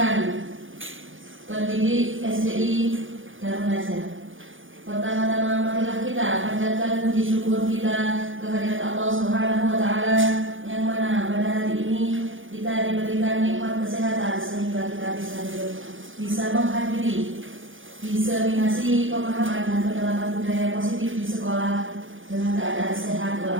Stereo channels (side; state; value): left; late; 0.58 ms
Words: pendidik SDI Darun Najah. Pertama-tama marilah kita panjatkan puji syukur kita kehadirat Allah Subhanahu wa taala yang mana pada hari ini kita diberikan nikmat kesehatan sehingga kita bisa menghadiri diseminasi pemahaman dan penerapan budaya positif di sekolah dengan keadaan sehat